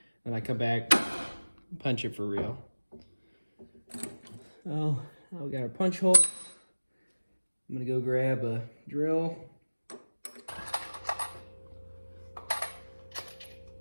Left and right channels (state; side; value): inverted; both; correlation -1.00